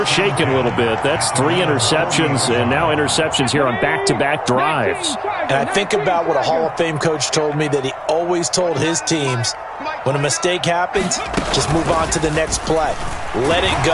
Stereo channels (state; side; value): identical; both; correlation 1.00